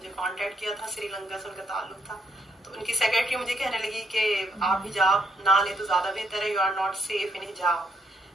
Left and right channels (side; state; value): both; normal; correlation 0.75